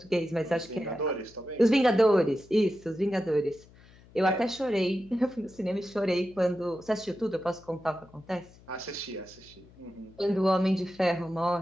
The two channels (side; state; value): left; noise; hum, 25 dB below the sound